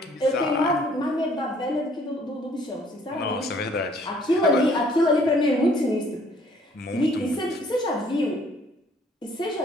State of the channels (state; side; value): normal; both; correlation 0.60